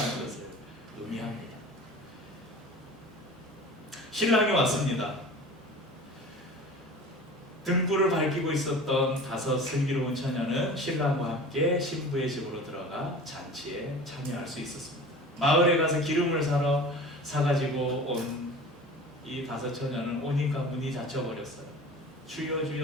것을 의미합니다. 신랑이 왔습니다. 등불을 밝히고 있었던 5 슬기로운 처녀는 신랑과 함께 신부의 집으로 들어가 잔치에 참여할 수 있었습니다. 마을에 가서 기름을 사가지고 온 이 5 처녀는 오니까 문이 닫혀버렸어요. 주여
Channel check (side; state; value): both; normal; correlation 0.39